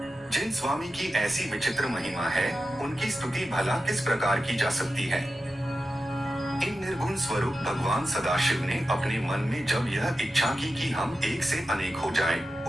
जिन स्वामी की ऐसी विचित्र महिमा है, उनकी स्तुति भला किस प्रकार की जा सकती है। इन निर्गुण स्वरूप भगवान सदाशिव ने अपने मन में जब यह इच्छा की कि हम एक से अनेक हो जाएं,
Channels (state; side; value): normal; both; correlation 0.91